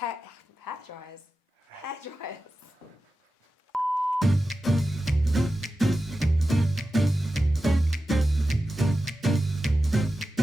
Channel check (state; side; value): normal; both; correlation 0.92